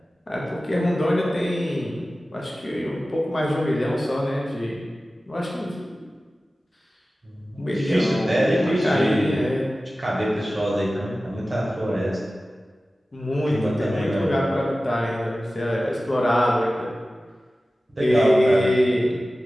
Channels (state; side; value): normal; both; correlation 0.96